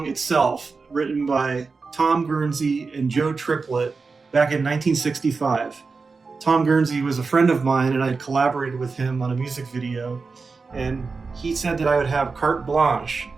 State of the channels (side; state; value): left; quieter; 4.5 dB